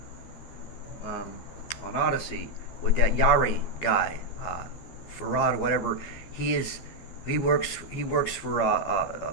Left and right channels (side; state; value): right; late; 12 ms